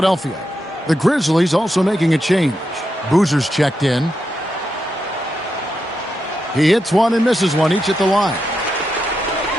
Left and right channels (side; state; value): both; normal; correlation 0.85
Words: The Grizzlies also making a change. Boozer's checked in. He hits one and misses one, each at the line.